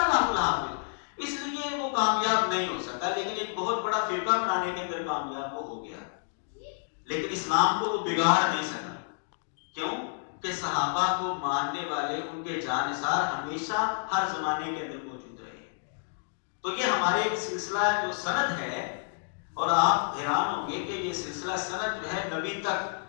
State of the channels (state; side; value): silent; right; digital silence